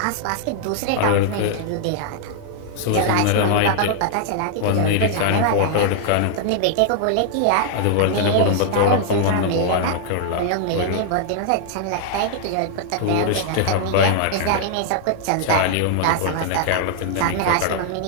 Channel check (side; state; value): both; different; correlation -0.01